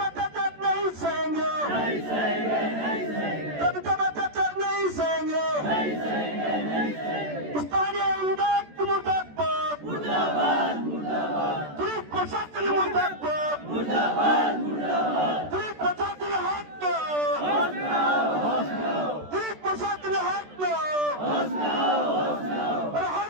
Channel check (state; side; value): late; left; 14 ms